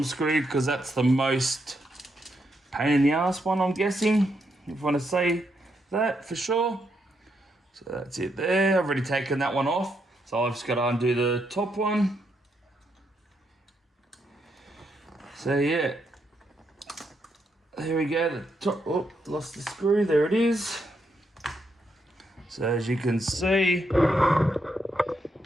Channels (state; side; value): normal; both; correlation 0.79